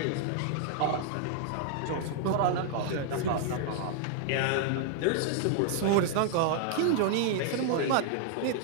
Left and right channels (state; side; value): different; both; correlation 0.00